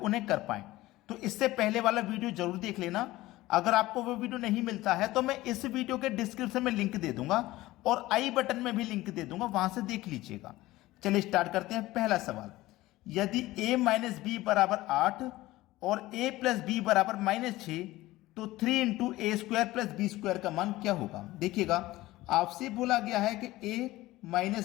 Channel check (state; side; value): quieter; right; 17.7 dB